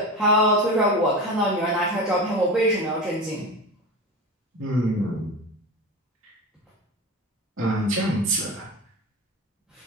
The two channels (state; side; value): normal; both; correlation 0.27